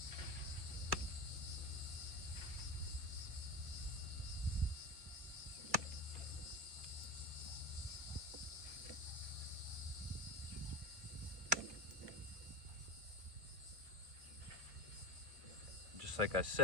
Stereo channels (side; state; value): left; late; 2.1 ms